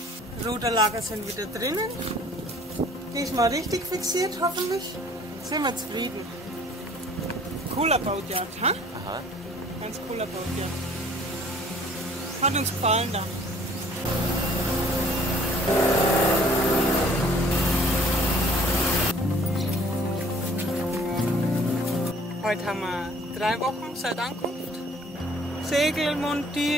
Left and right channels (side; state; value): both; normal; correlation 0.56